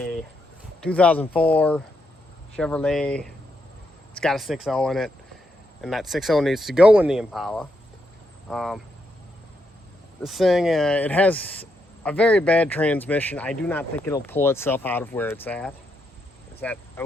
2004 Chevrolet. It's got a 6.0 in it, and that 6.0 needs to go in the Impala. This thing, it has a very bad transmission. I do not think it'll pull itself out of where it's at. It's at a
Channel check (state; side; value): normal; both; correlation 0.80